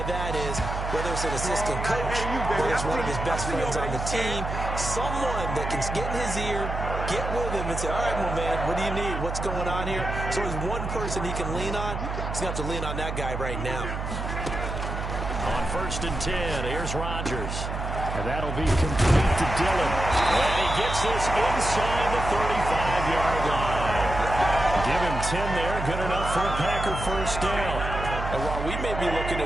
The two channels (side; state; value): right; noise; hum, 4 dB below the sound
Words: that is, whether it's an assistant coach, whether it's one of his best friends on the team, someone that can get in his ear, get with him and say, all right, well, man, what do you need? What's going on here? So there's one person he can lean on. He's going to have to lean on that guy right now. On 1st and 10, here's Rodgers. And that'll be complete to Dillon. And he gets this inside the 35-yard line. Give him 10 there. Good enough for a Packer first down. And while we may be looking